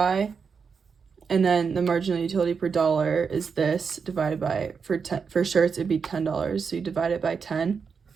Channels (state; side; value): quieter; left; 5.8 dB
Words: And then the marginal utility per dollar is this divided by, for shirts, it'd be $10. So you divide it by 10.